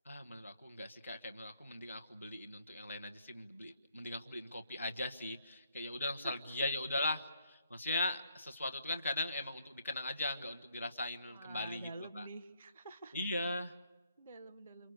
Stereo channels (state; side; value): inverted; both; correlation -0.70